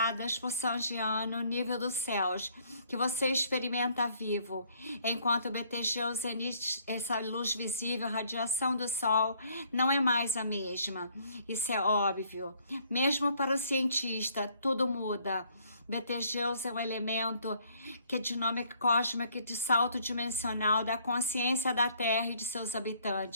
por São Jean no nível dos céus, que você experimenta vivo. Enquanto Betelgeuse emite essa luz visível, a radiação do Sol não é mais a mesma. Isso é óbvio. Mesmo para o cientista, tudo muda. Betelgeuse é um elemento que é dinâmica cósmica de salto dimensional da consciência da Terra e de seus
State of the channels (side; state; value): both; inverted; correlation -0.64